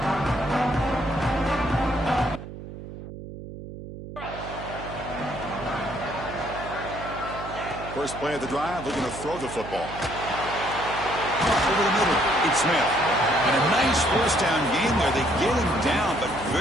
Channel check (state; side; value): noise; right; hum, 12 dB below the sound